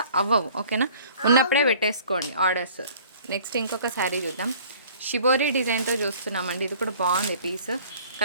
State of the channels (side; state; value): both; inverted; correlation -0.51